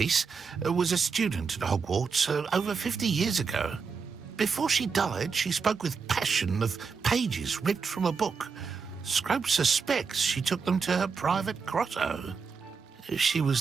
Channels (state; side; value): quieter; left; 5.4 dB